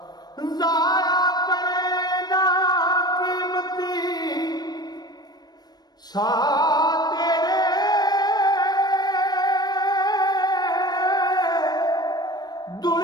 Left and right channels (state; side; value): late; right; 0.19 ms